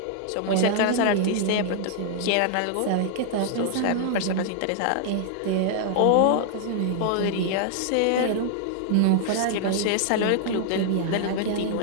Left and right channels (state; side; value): different; both; correlation -0.01